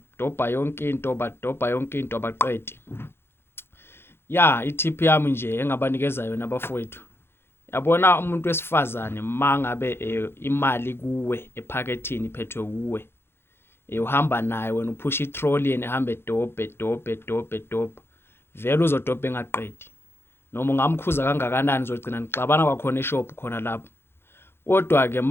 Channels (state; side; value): late; right; 0.11 ms